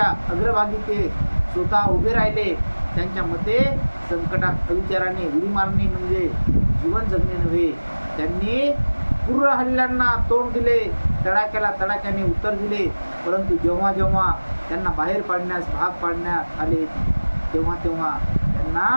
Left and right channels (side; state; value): both; inverted; correlation -1.00